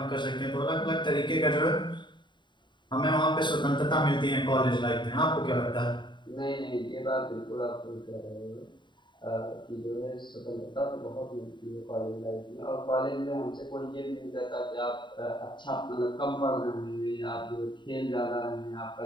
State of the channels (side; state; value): right; late; 0.23 ms